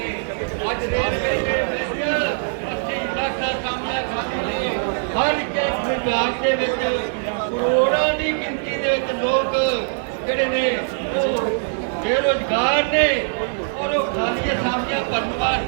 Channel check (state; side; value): silent; left; 62 dB below the other